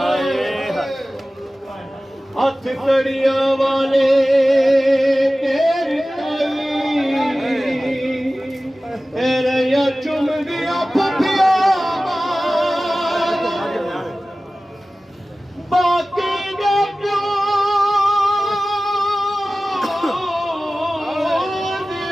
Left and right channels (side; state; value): both; normal; correlation 0.97